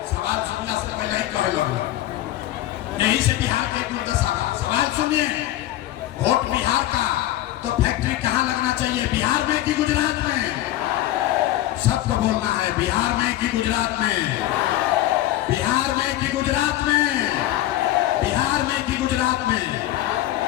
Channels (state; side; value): quieter; right; 14.4 dB